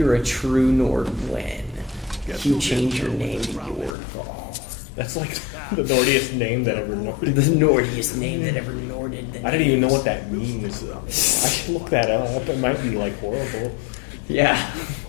a true Nord when you change your name to Jordval. That's like the Nordiest name that ever Norded. The Nordiest name that ever Norded. I didn't even know what that means. I should look that up. It might be like horrible. Yeah.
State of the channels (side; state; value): right; drops out; at 4.0 s